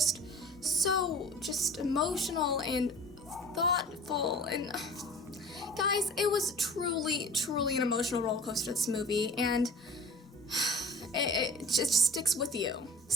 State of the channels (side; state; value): both; normal; correlation 0.43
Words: so emotional and thoughtful, and guys, it was truly an emotional roller coaster, this movie, and it just sticks with you.